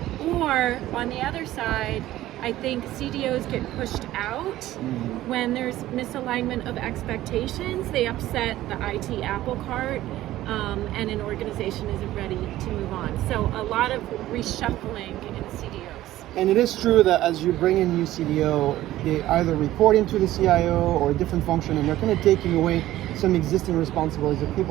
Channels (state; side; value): quieter; left; 14.9 dB